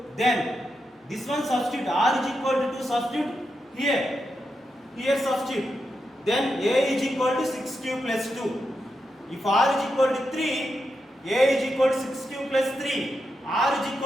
then this one substitute, r is equal to 2, substitute here substitute. Then a is equal to 6q plus 2. If r is equal to 3, a is equal to 6q plus 3. R is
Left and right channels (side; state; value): both; normal; correlation 0.86